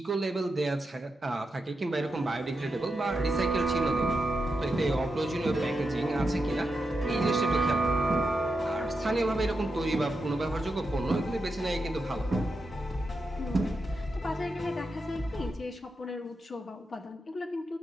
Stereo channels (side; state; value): both; normal; correlation 0.87